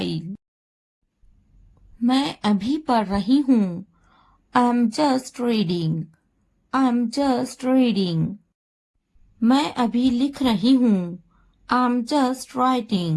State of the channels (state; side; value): identical; both; correlation 1.00